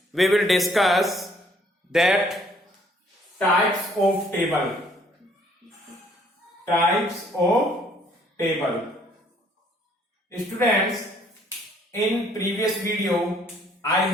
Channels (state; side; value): normal; both; correlation 0.62